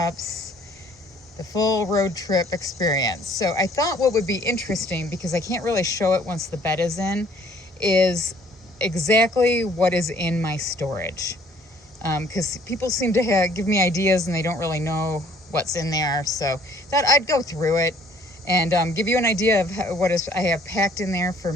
the full road trip experience. So I thought what would be interesting, because I can't really show it once the bed is in, is exactly what is in my storage. Because people seem to give me ideas and they don't really know what's in there, so thought I'd go through it and give you an idea of what I have packed in there for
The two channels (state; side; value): normal; both; correlation 0.59